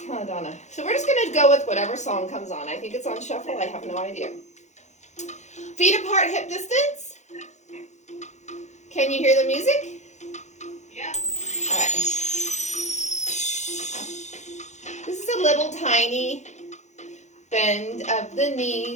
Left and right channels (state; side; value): late; right; 0.34 ms